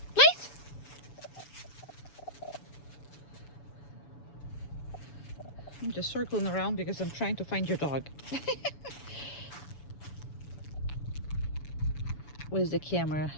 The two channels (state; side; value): late; right; 6.9 ms